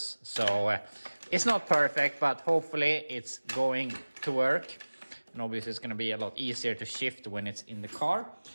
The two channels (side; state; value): both; inverted; correlation -1.00